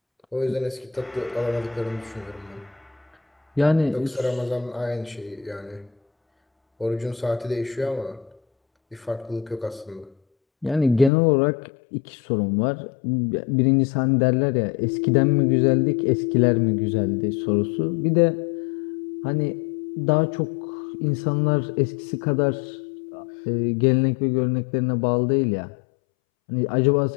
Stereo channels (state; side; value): drops out; right; at 11.1 s